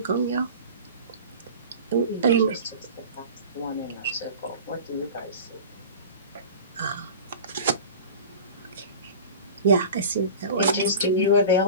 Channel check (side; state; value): both; inverted; correlation -0.36